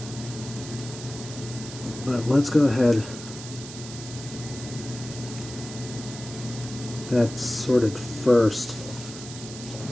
But let's go ahead. That's sorted first.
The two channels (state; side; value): noise; right; hiss, 12 dB below the sound